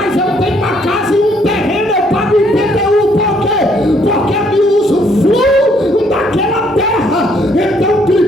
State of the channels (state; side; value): normal; both; correlation 0.67